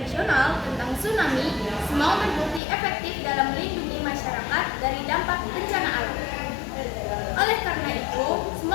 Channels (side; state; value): right; drops out; at 2.6 s